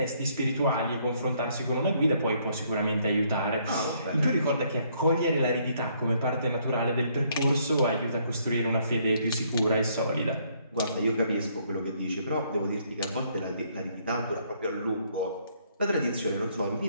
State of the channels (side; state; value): both; inverted; correlation -0.68